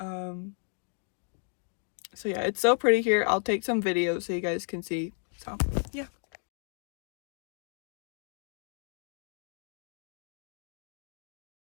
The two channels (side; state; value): right; silent; 56 dB below the other